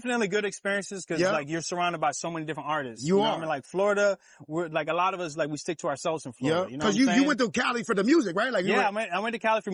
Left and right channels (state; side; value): identical; both; correlation 1.00